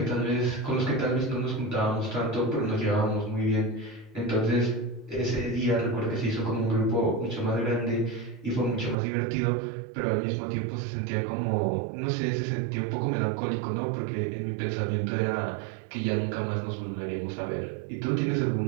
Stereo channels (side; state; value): left; drops out; at 9.0 s